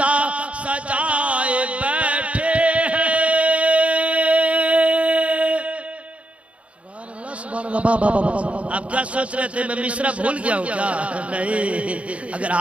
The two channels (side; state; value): left; late; 0.063 ms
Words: सजाए बैठे आप क्या सोच रहे थे मैं मिश्रा भूल गया हूँ क्या? नहीं, अगर